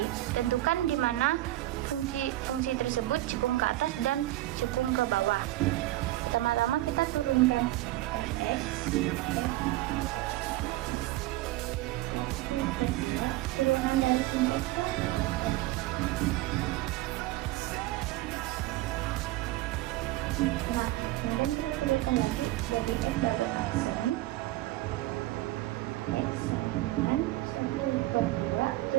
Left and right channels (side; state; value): left; quieter; 16.8 dB